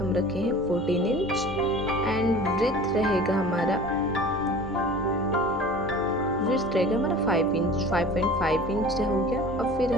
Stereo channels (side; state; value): left; noise; rumble, 20 dB below the sound